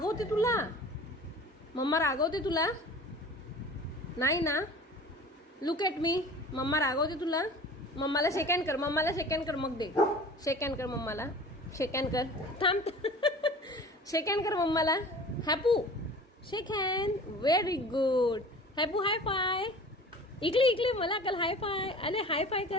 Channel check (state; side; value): normal; both; correlation 0.42